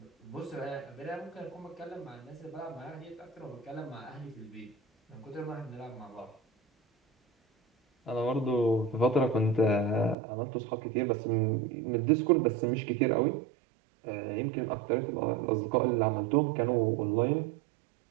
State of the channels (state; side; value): drops out; left; at 10.2 s